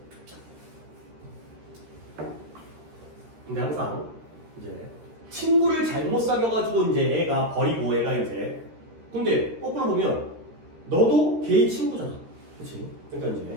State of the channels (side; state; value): left; late; 13 ms